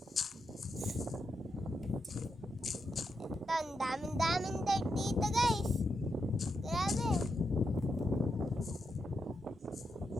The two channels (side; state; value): both; normal; correlation 0.85